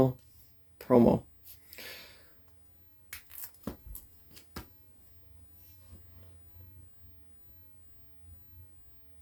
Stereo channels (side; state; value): both; identical; correlation 1.00